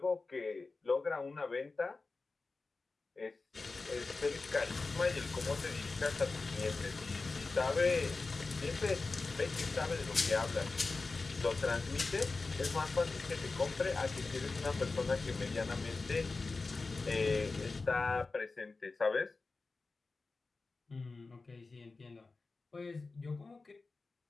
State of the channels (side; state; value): right; quieter; 3.8 dB